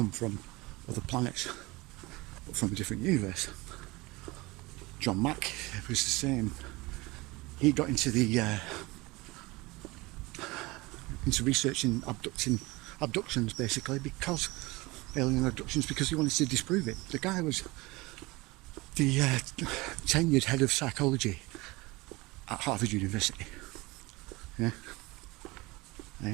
from other planets but from a different universe. John Mack was the same. He got into researching abductions basically, because alien abductions, because he wanted to disprove it. The guy was the tenured head of psychology at Harvard University. Yeah.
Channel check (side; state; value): left; quieter; 22.6 dB